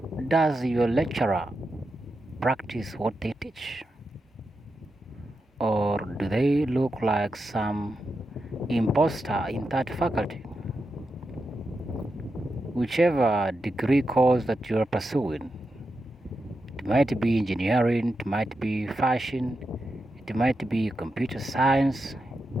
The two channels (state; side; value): normal; both; correlation 0.88